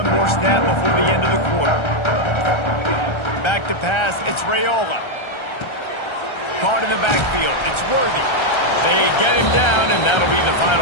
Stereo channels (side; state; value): right; late; 1.3 ms